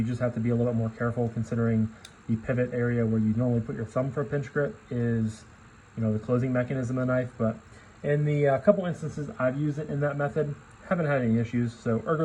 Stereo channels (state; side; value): identical; both; correlation 1.00